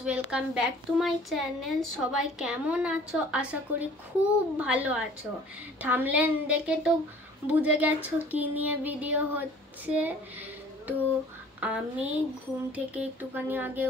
welcome back to my channel. সবাই কেমন আছো? আশা করি খুব ভালো আছো। থাম্বনেল দেখে তো বুঝে গেছো কি নিয়ে ভিডিও হচ্ছে। তো আমি ঘুম থেকে একটুখানি আগে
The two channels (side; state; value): both; normal; correlation 0.51